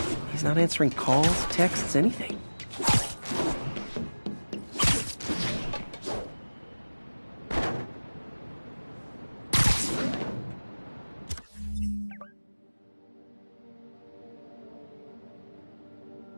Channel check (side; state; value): both; inverted; correlation -1.00